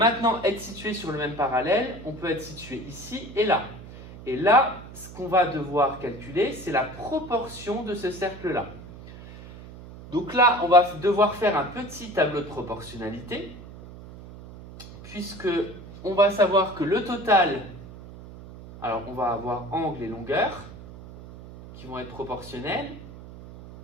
être situé sur le même parallèle, on peut être situé ici et là. Et là, ce qu'on va devoir calculer, c'est la proportion de ce cercle-là. Donc là, on va devoir faire un petit tableau de proportionnalité, puisque on va savoir que le total, alors on va avoir angle et longueur, qui vont être proportionnels.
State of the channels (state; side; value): noise; right; hum, 16 dB below the sound